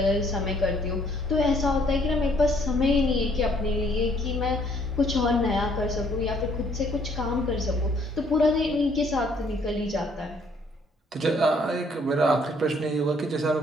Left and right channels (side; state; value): both; normal; correlation 0.65